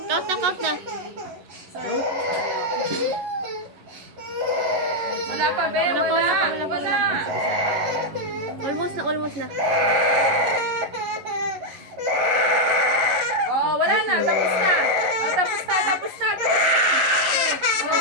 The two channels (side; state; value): left; late; 11 ms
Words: Count na, count na. Wala pa, be. Wala pa, Wala. wala pa, wala pa, Wala. Almost na, almost na. Oh, wala na. Tapos na. Oh, tapos na, tapos na, tapos na.